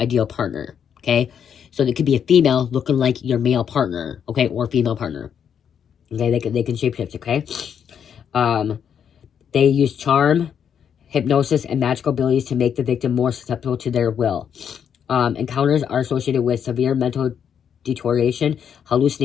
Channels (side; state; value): right; quieter; 8.1 dB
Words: partner, okay? So it could be a female looking like your male partner, okay, or female partner. Okay, they can shapeshift, okay? They use charm, hypnosis, and magical abilities to make the victim more susceptible to their will. Encounters are associated with severe mental deterioration,